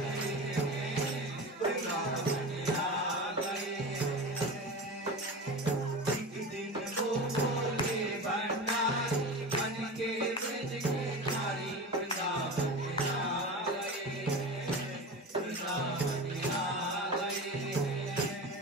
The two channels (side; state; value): both; normal; correlation 0.29